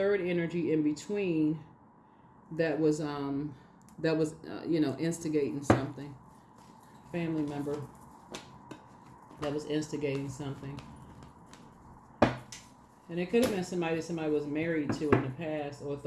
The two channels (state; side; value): identical; both; correlation 1.00